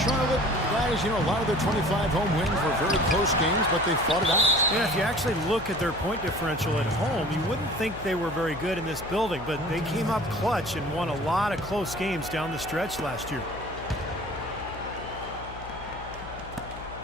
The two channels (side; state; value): left; noise; hum, 14 dB below the sound